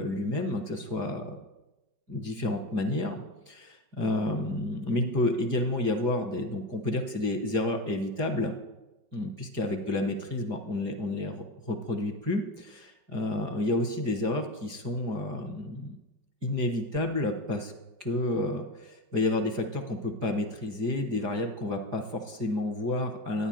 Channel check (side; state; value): left; late; 4.9 ms